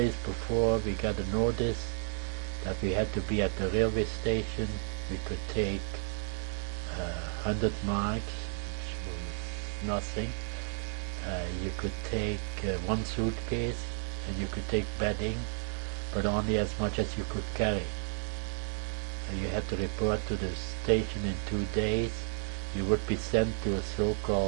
before, we got a notice that we had to be at the railway station. We could take 100 marks, which was nothing. You could take 1 suitcase, and you could take bedding, but only as much as you could carry. You had to report to the station in 2 days. You would be sent to a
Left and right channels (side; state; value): left; silent; 56 dB below the other